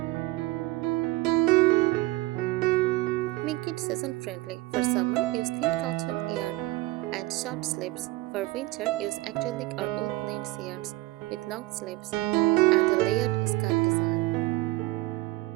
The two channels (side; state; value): left; quieter; 19.7 dB